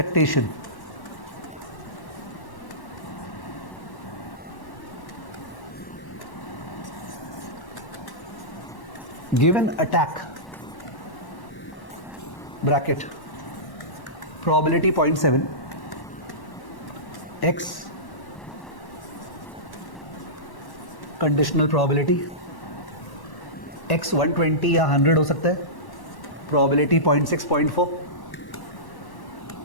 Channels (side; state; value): right; late; 1.1 ms